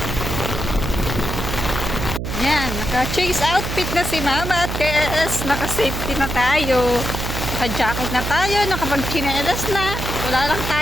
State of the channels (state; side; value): noise; right; hum, 4 dB below the sound